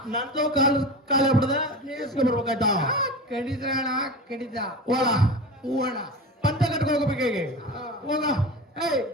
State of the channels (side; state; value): both; normal; correlation 0.29